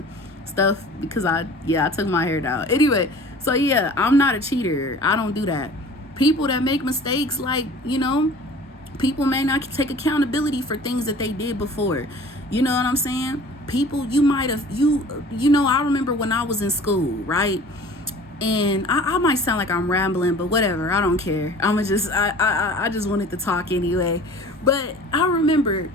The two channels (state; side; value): normal; both; correlation 0.45